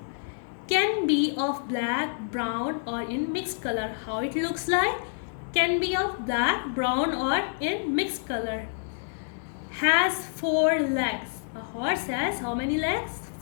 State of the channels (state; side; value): silent; right; digital silence